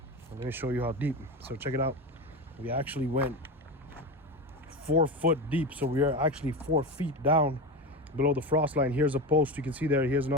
let me show you how deep. So check it out. We actually went 4 foot deep. So we are actually 4 feet down below the frost line. Here's a post you can see there. Here's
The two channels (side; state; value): both; normal; correlation 0.22